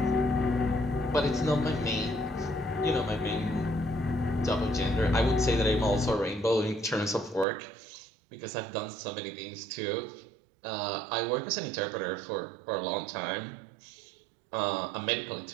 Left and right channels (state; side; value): drops out; left; at 7.5 s